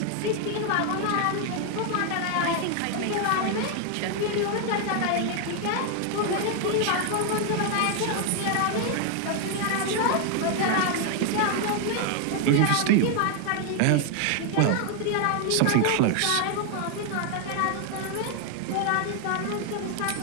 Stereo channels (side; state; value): both; different; correlation 0.00